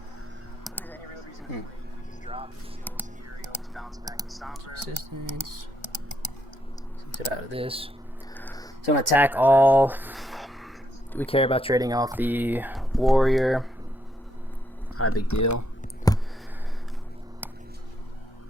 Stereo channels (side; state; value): both; normal; correlation 0.76